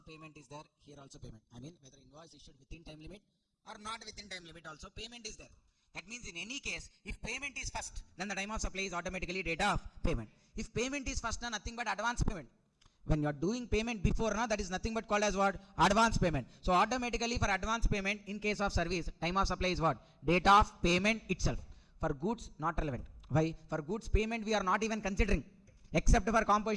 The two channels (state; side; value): identical; both; correlation 1.00